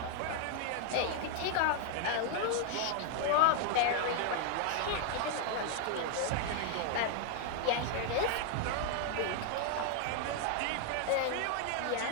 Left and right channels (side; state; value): both; different; correlation 0.00